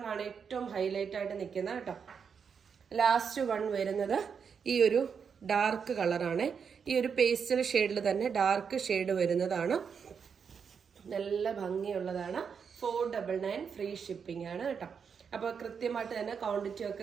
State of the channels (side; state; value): left; quieter; 6.5 dB